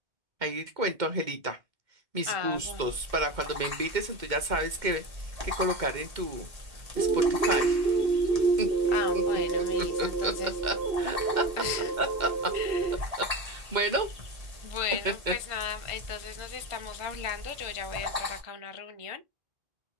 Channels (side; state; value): left; late; 2.1 ms